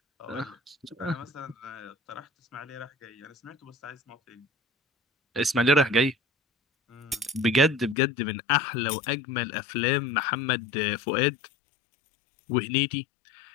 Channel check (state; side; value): drops out; right; at 8.0 s